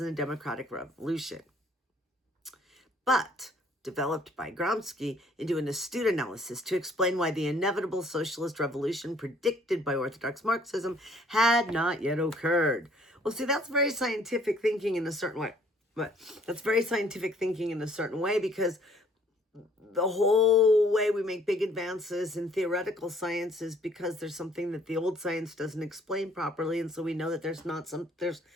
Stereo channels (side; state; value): both; normal; correlation 0.60